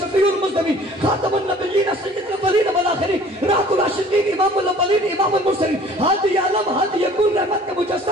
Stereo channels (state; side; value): normal; both; correlation 0.51